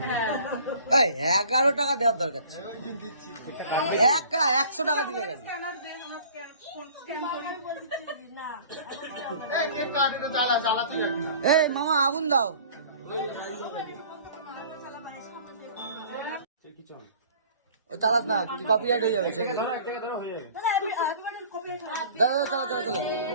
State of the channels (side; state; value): both; inverted; correlation -0.49